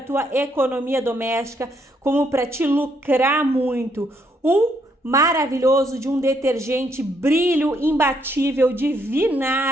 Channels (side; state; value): both; normal; correlation 0.73